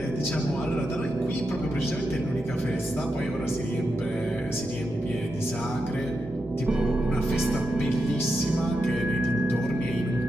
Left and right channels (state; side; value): normal; both; correlation 0.86